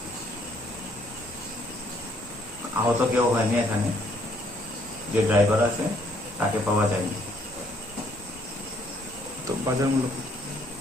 আহত কেউ হয়নি এখানে, যে ড্রাইভার আছে তাকে পাওয়া যায়নি। তো বাজার মূল্য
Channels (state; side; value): normal; both; correlation 0.66